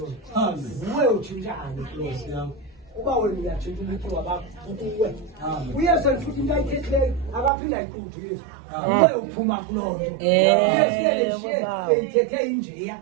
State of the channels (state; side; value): drops out; left; at 7.5 s